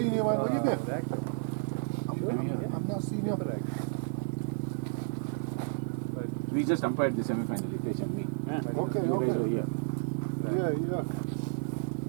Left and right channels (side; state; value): left; silent; digital silence